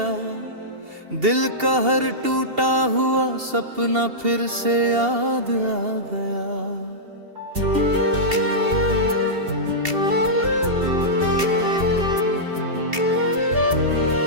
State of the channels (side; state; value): left; late; 2.7 ms